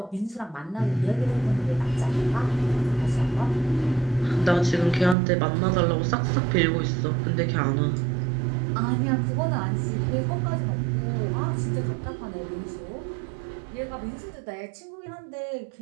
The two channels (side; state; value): left; drops out; at 5.2 s